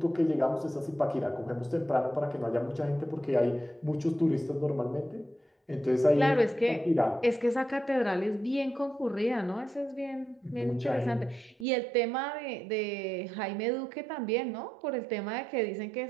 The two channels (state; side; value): drops out; left; at 11.7 s